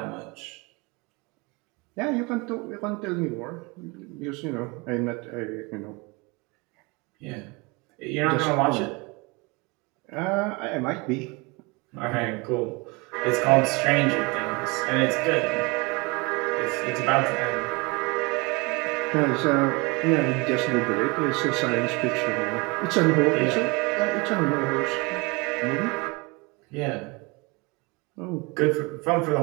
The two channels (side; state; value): left; quieter; 27.4 dB